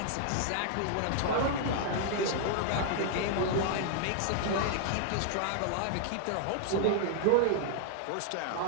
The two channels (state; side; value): different; both; correlation -0.01